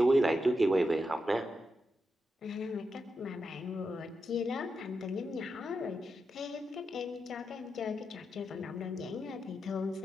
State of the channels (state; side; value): normal; both; correlation 0.87